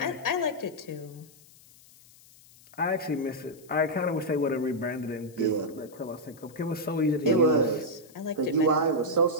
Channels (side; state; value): left; noise; hiss, 25 dB below the sound